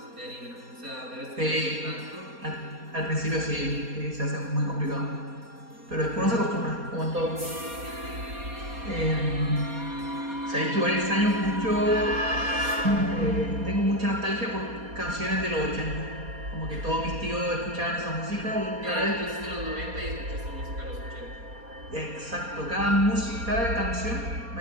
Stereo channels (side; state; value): left; late; 4.2 ms